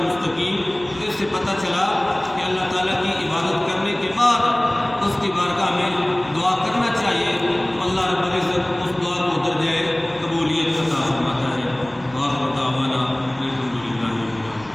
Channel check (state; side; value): noise; right; hum, 24 dB below the sound